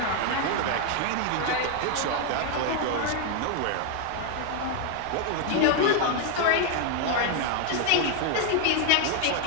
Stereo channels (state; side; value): different; both; correlation 0.00